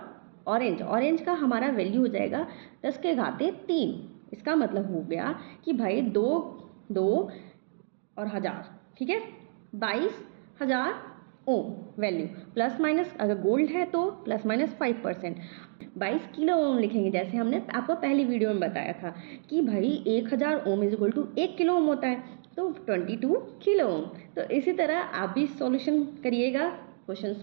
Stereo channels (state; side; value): silent; left; digital silence